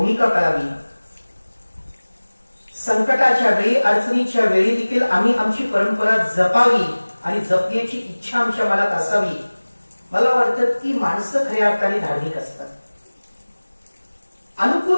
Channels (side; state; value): both; inverted; correlation -1.00